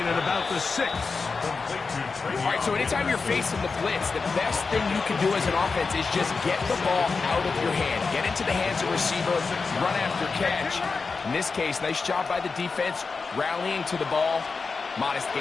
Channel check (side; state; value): right; quieter; 4.6 dB